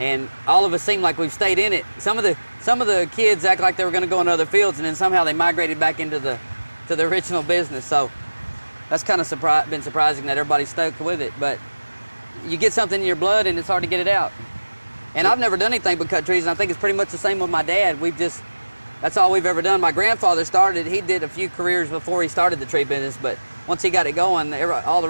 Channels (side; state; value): both; inverted; correlation -1.00